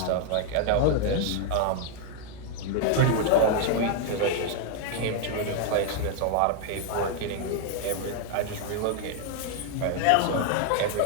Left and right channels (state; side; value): different; both; correlation 0.00